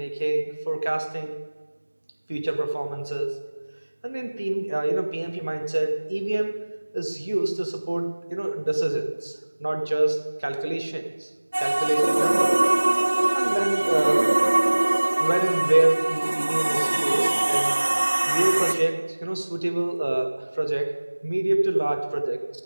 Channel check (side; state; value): both; inverted; correlation -1.00